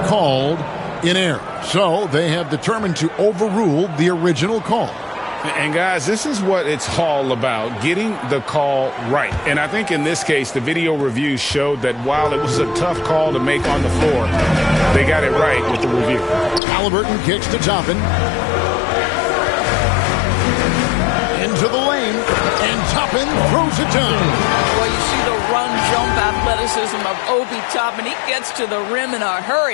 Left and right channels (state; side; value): drops out; right; at 16.6 s